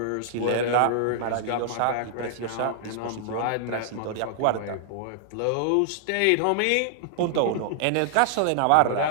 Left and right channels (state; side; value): different; both; correlation -0.01